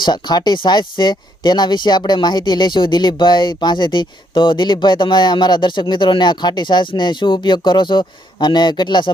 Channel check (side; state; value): both; normal; correlation 0.72